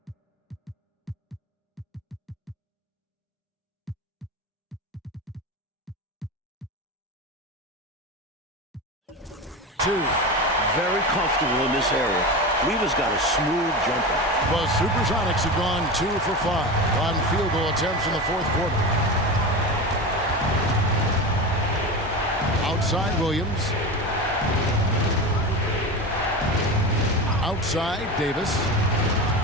Two. Very comfortable in this area. Lever's got a smooth jumper. The SuperSonics have gone 2 for 5 on field goal attempts in the fourth quarter. Outside, Williams. Outside, Davis.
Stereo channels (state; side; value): normal; both; correlation 0.25